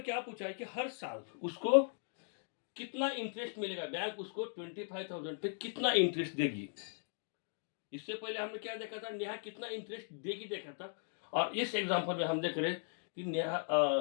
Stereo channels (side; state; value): right; silent; digital silence